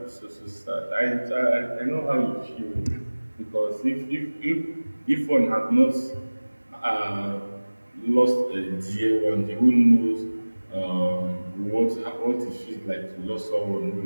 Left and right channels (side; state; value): both; inverted; correlation -1.00